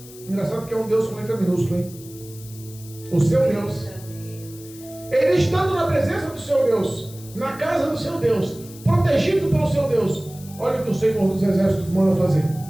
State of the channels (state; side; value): noise; left; hiss, 19 dB below the sound